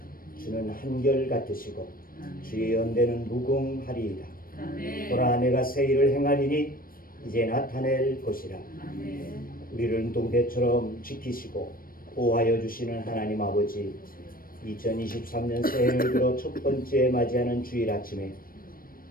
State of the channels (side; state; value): right; late; 0.41 ms